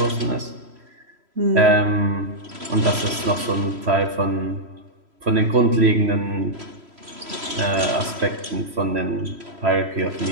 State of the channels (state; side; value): late; left; 3.1 ms